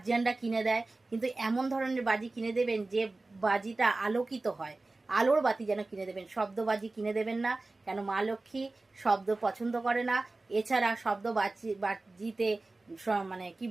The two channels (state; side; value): quieter; left; 3.2 dB